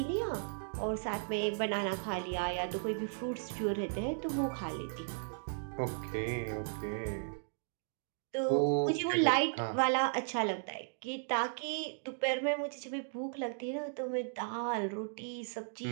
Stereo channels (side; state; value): left; silent; digital silence